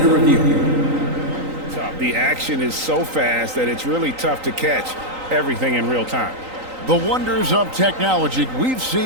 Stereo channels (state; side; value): late; left; 3.9 ms